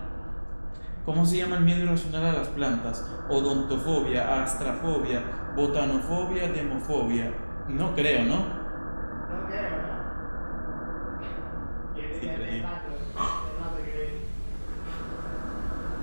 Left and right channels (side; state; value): both; inverted; correlation -1.00